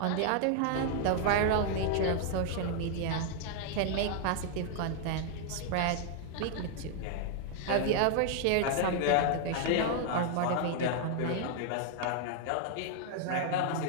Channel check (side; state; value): both; different; correlation 0.00